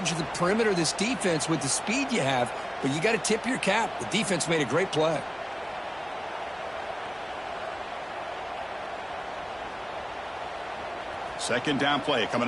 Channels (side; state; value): both; identical; correlation 1.00